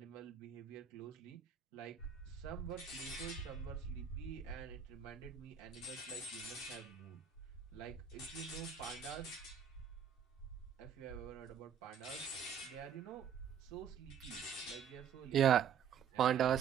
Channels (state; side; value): quieter; left; 8.0 dB